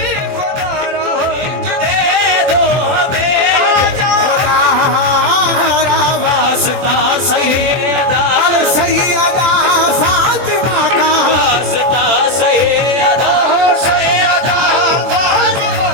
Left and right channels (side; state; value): left; late; 24 ms